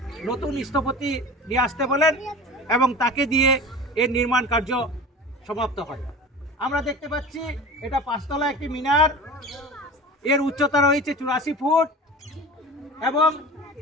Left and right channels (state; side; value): normal; both; correlation 0.35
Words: নতুন স্থপতি নিয়ে আসতে বলেন এবং তাকে দিয়ে এর নির্মাণ কার্য সমাপ্ত হয়। আমরা দেখতে পাচ্ছি এটা 5 তলা একটি মিনার। এর উচ্চতা রয়েছে 84 ফুট এবং